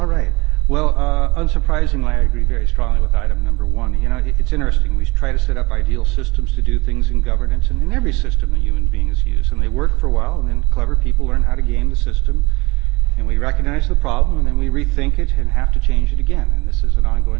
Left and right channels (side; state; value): left; quieter; 24.3 dB